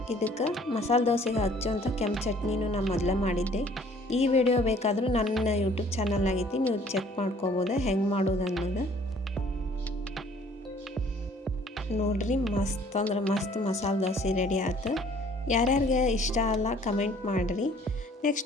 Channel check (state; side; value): normal; both; correlation 0.56